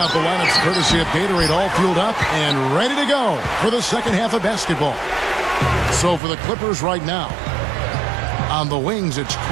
the lineups courtesy of Gatorade, all fueled up and ready to go for the second half of basketball. So for the Clippers right now, on the wings, it's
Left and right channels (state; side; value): drops out; left; at 6.2 s